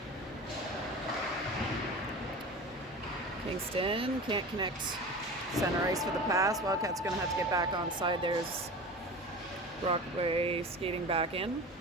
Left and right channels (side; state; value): both; normal; correlation 0.33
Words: Kingston can't connect center ice for the pass. Wildcats going to have to get back on side. There's Brockway skating back in.